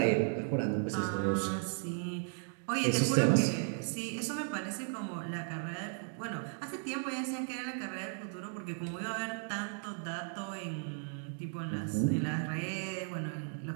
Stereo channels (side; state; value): left; silent; 54 dB below the other